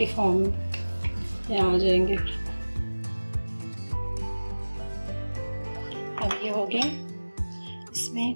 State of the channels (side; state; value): both; inverted; correlation -1.00